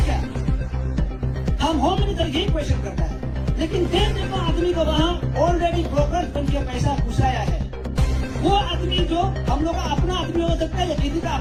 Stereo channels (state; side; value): identical; both; correlation 1.00